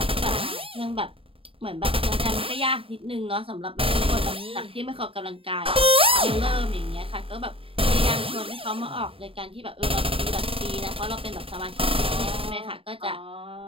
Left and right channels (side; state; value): left; late; 0.27 ms